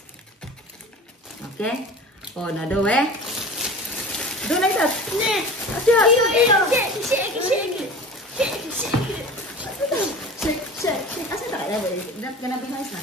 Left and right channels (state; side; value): normal; both; correlation 0.37